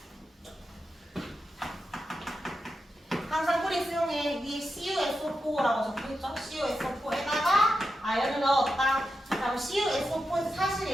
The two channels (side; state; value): both; normal; correlation 0.88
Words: 항상 뿌리 수용에 위에 CuSO4라고 적혀있죠? CuSO4에다가 아연을 넣었다. 그럼 CuSO4에서